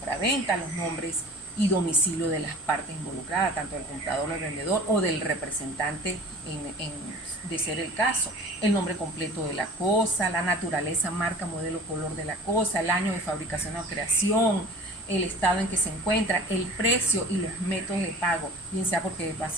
los nombres y domicilio de las partes involucradas, tanto del comprador, del vendedor o del representante de ser el caso, el nombre completo de la cosa, la naturaleza, marca, modelo, color de la cosa, el año de fabricación o creación, el estado en que se encuentra, el precio y los métodos de pago, bien sea porque va a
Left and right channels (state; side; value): normal; both; correlation 0.43